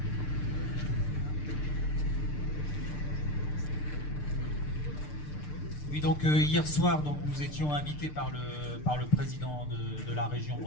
Oui, donc hier soir, donc, nous étions invités par le président de la région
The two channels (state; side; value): late; right; 6.7 ms